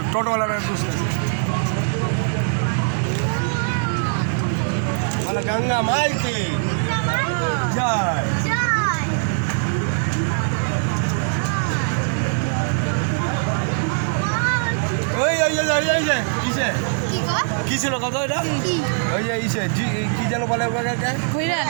টোটোওয়ালাটা খুঁজতেছে। বলে গঙ্গা মাইকে জয়। ওই ওই ওই ওই ওই যে কিসে কি ছিল কত এটা? ওই যে ইসে কি যেন বলে ওটাকে?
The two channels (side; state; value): left; silent; 65 dB below the other